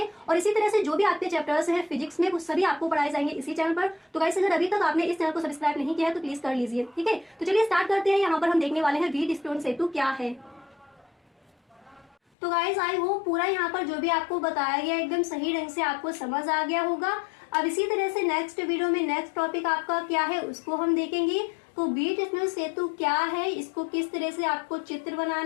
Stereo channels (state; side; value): drops out; right; at 12.2 s